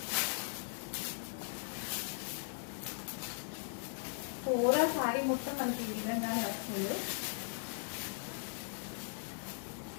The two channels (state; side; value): silent; right; digital silence